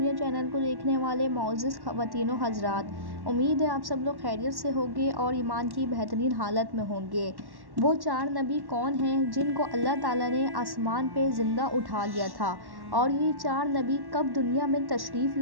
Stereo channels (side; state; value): left; late; 1.1 ms